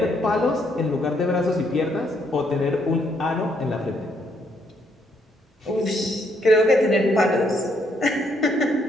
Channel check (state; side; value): normal; both; correlation 0.72